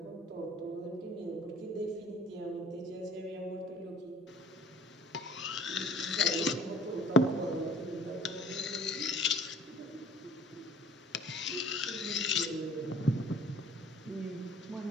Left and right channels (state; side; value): normal; both; correlation 0.50